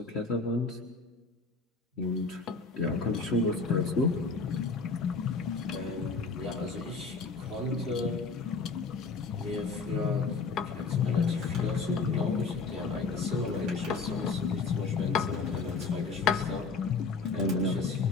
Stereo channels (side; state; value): right; quieter; 4.4 dB